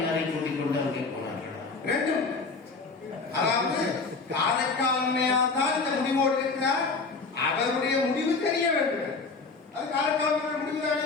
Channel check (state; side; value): quieter; right; 4.2 dB